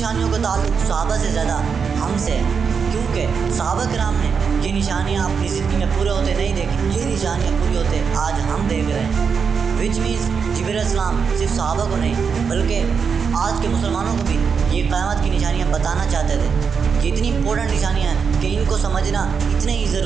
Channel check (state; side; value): quieter; left; 6.0 dB